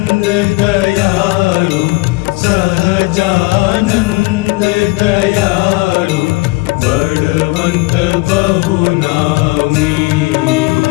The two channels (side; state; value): right; quieter; 23.6 dB